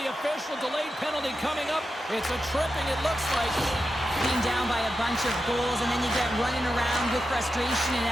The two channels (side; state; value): both; normal; correlation 0.89